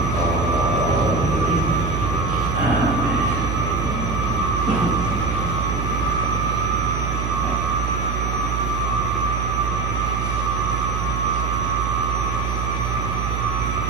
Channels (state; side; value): noise; right; hum, 1 dB below the sound